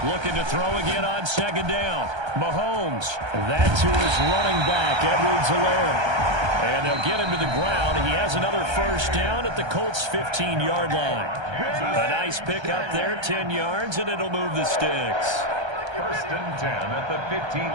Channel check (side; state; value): left; late; 1.3 ms